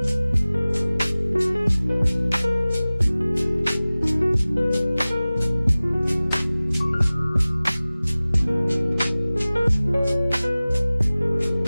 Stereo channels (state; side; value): inverted; both; correlation -0.98